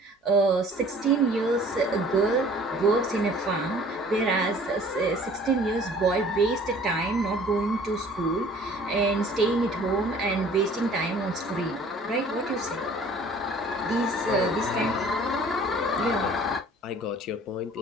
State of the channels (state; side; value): normal; both; correlation 0.51